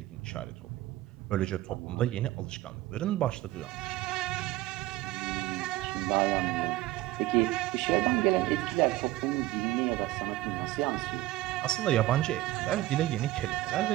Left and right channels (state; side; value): quieter; left; 16.7 dB